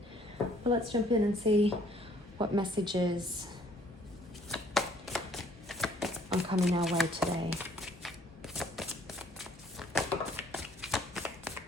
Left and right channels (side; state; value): both; normal; correlation 0.61